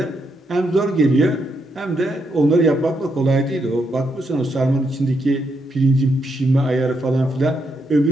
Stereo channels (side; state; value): both; normal; correlation 0.79